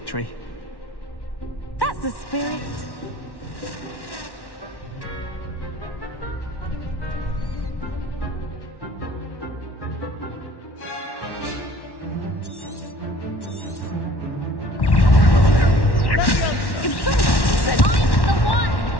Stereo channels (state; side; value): late; right; 1.1 ms